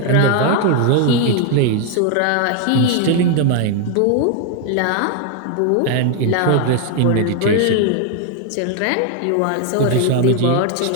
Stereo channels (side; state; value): both; different; correlation 0.01